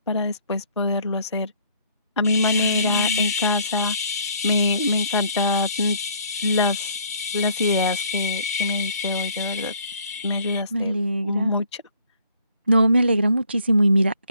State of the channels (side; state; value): both; inverted; correlation -0.61